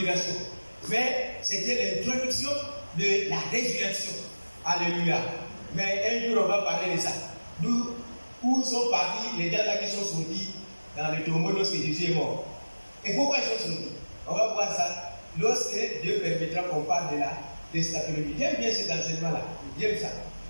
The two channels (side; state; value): both; inverted; correlation -1.00